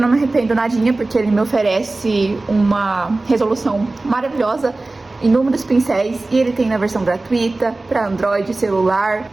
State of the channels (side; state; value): left; quieter; 3.1 dB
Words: me arrependo nadinha, porque ele me oferece uma resolução maravilhosa, inúmeros pincéis, e ele tem na versão gratuita para Android, celular.